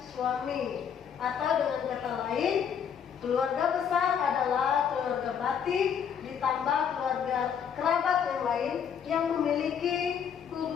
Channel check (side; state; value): right; quieter; 7.8 dB